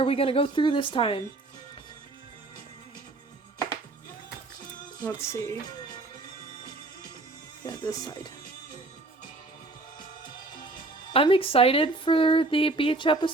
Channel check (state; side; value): quieter; left; 3.1 dB